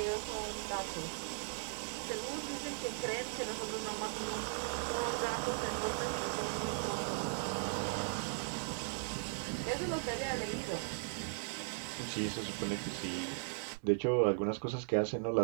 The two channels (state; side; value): silent; left; digital silence